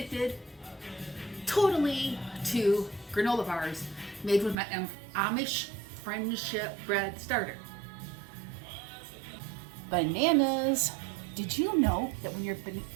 totally to granola bars made with my Amish Friendship Bread Starter. Bananas. Did you know that when you're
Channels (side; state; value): left; drops out; at 4.5 s